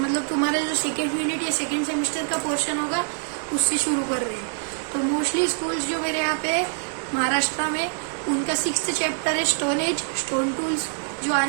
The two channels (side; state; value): left; silent; digital silence